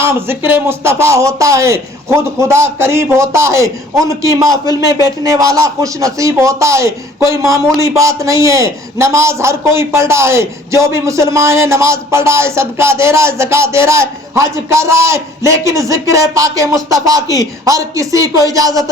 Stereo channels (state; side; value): normal; both; correlation 0.53